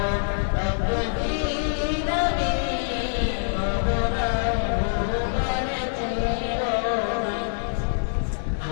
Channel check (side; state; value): right; silent; 62 dB below the other